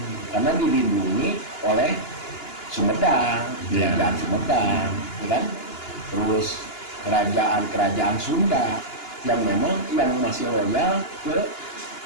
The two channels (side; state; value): right; late; 2.9 ms